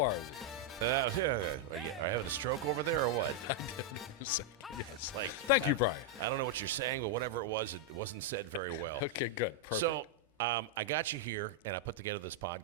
are you? Are you having a stroke over there or what? It's like, Thank you, Brian. I don't know what you're saying, but whatever it wasn't said very well. Okay, good. Perfect. So I got you here, and I put together this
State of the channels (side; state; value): both; normal; correlation -0.03